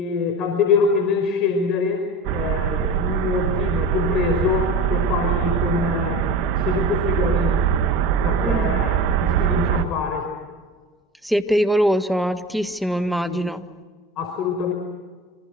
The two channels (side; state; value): both; normal; correlation 0.31